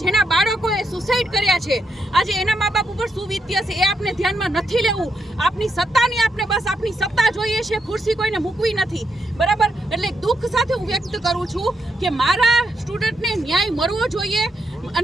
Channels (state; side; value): normal; both; correlation 0.81